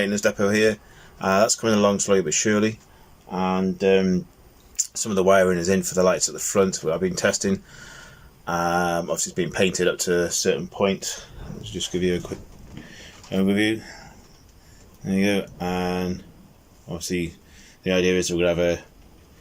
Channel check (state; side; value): identical; both; correlation 1.00